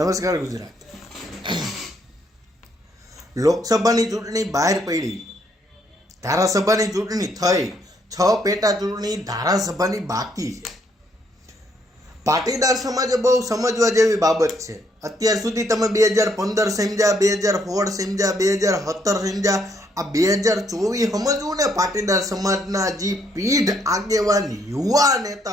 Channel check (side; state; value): both; normal; correlation 0.71